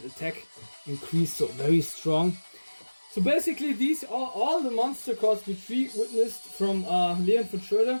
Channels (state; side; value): inverted; both; correlation -1.00